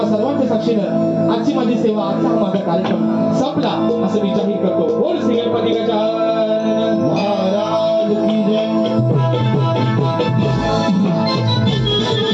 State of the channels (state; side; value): identical; both; correlation 1.00